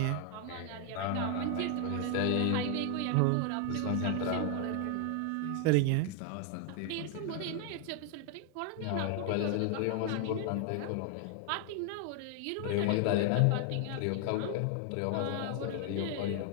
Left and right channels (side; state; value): both; different; correlation 0.00